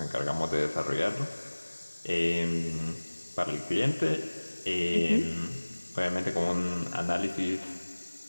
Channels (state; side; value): inverted; both; correlation -1.00